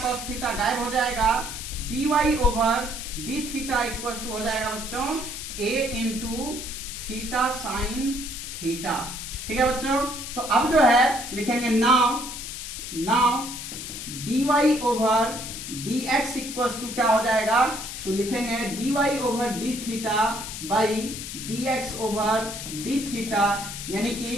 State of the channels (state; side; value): noise; left; hiss, 8 dB below the sound